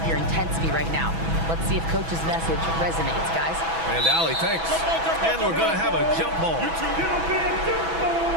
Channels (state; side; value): late; left; 6.1 ms